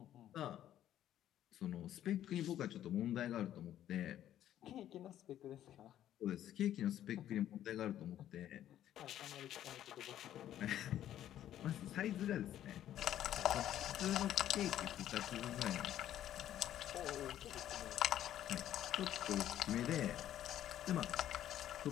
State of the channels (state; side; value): quieter; right; 11.7 dB